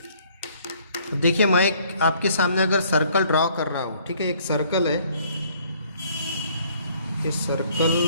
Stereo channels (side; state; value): both; inverted; correlation -0.61